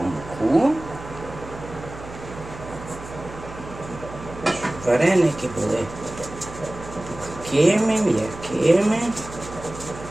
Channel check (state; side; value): noise; right; hum, 14 dB below the sound